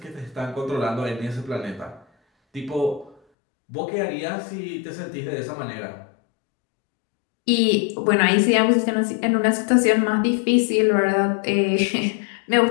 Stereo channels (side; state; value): right; drops out; at 3.2 s